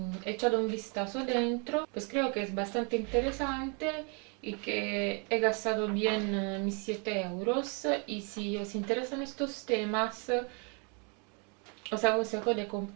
echado un vistazo dentro, pues creo que es bastante interesante y que he gastado bien mis 7 euros. Y si os interesan estos temas, os aconsejo de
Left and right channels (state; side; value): quieter; left; 35.2 dB